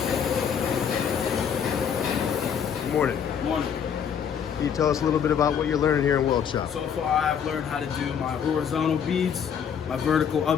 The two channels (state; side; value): quieter; right; 7.7 dB